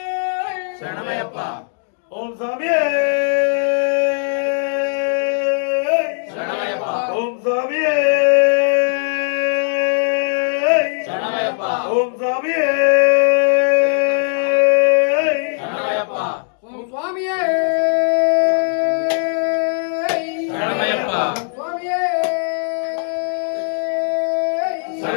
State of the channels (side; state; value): right; silent; digital silence